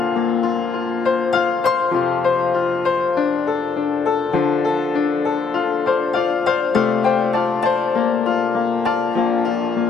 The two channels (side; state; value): right; quieter; 4.7 dB